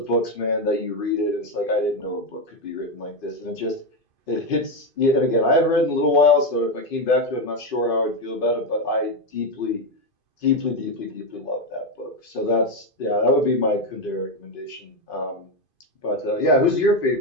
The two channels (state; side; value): late; right; 2.5 ms